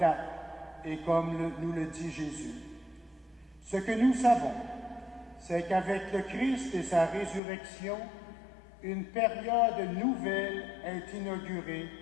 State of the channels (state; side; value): drops out; right; at 7.4 s